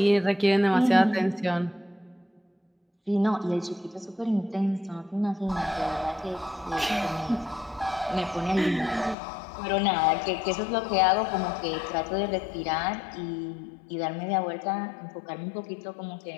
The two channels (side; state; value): right; drops out; at 9.2 s